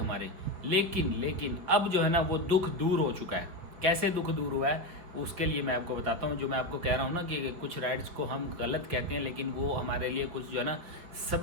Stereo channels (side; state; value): left; late; 5.5 ms